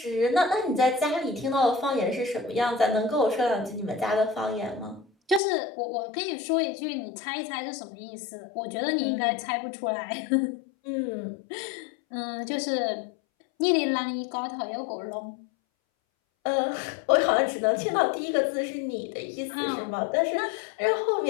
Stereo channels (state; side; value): drops out; right; at 5.4 s